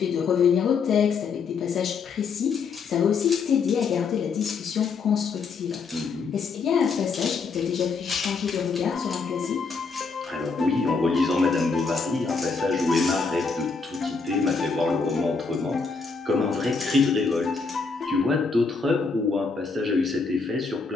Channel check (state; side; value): quieter; right; 4.8 dB